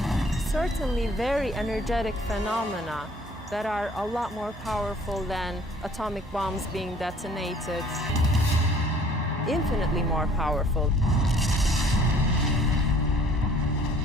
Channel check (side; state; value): both; normal; correlation 0.55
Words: certainly very energetic phenomena that are a lot more powerful than atomic bombs being detonated. Infinitely more powerful.